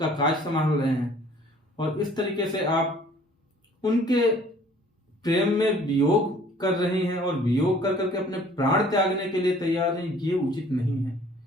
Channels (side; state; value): both; normal; correlation 0.54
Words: काज संभाल रहे हैं, और इस तरीके से आप उनके प्रेम में वियोग कर रही हैं और वियोग कर करके अपने प्राण त्यागने के लिए तैयार हैं, ये उचित नहीं है।